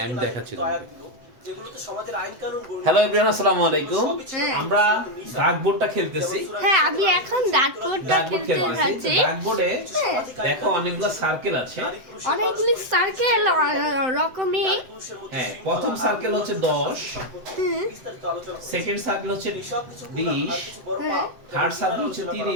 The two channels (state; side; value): late; left; 7.9 ms